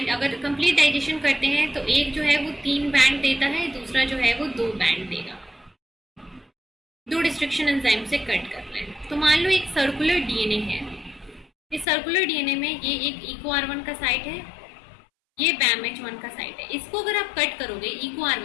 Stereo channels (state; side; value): drops out; right; at 11.9 s